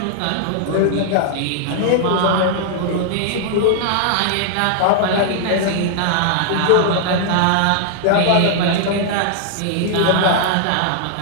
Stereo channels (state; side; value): different; both; correlation -0.01